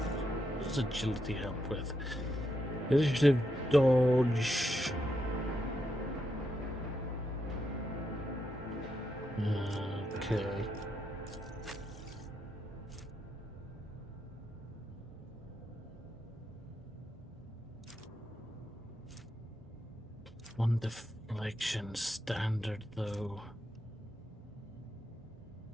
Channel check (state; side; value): normal; both; correlation 0.82